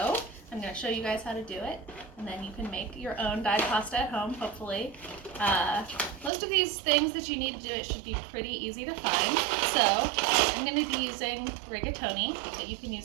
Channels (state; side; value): drops out; left; at 6.3 s